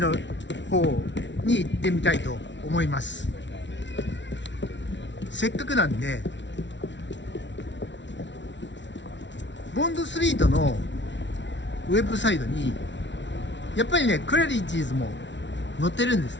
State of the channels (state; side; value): late; right; 0.53 ms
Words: 方に行ってみたいと思います。せっかくなんでボンドストリートのウェブサイトにやっぱりねクラリッジーズも載ってるんです